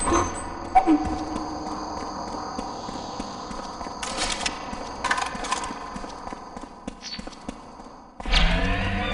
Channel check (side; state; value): both; identical; correlation 1.00